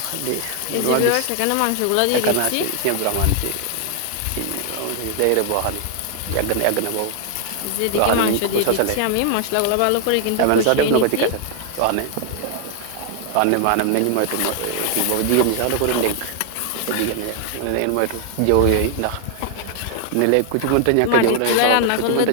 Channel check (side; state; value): both; different; correlation 0.00